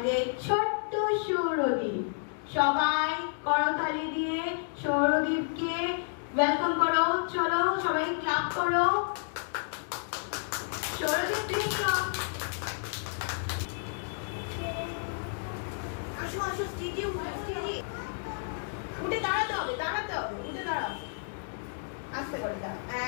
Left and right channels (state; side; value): silent; right; digital silence